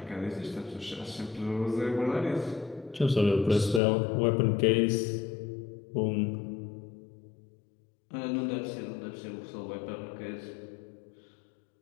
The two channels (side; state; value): right; drops out; at 3.8 s